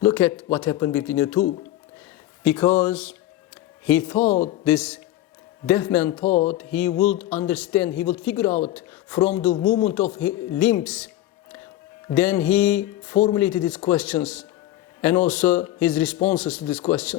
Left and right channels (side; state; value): right; quieter; 14.2 dB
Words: Look at what happened between the two. Because he thought, this deaf man thought, he would understand, he would figure out from the movement of his limbs. Then he formulated his questions and also his responses to these